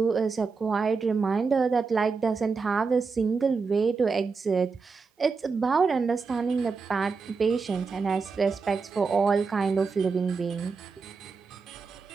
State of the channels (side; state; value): left; quieter; 4.8 dB